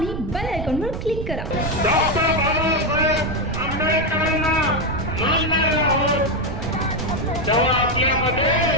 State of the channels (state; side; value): noise; right; rumble, 6 dB below the sound